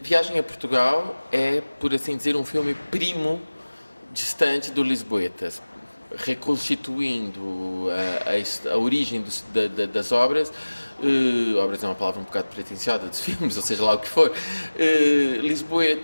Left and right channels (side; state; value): both; inverted; correlation -1.00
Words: a Portugal é, por assim dizer, um filme primo distante do Lisboetas, reconstituindo a origem das obras. Obras é uma palavra um bocado pretenciosa dos filmes, ou seja lá o que for.